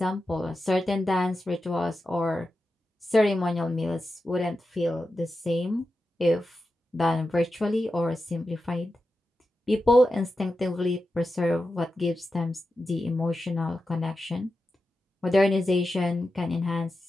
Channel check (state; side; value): normal; both; correlation 0.91